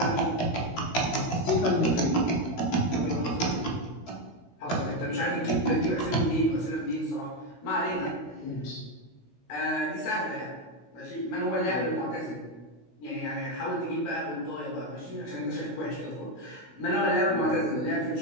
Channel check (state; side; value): late; right; 16 ms